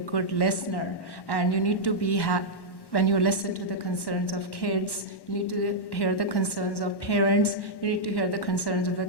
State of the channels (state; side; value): late; right; 1.1 ms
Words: listener, and you need to be when you listen to the concerns of kids, you need to hear the concerns of parents, you need to hear the concerns of the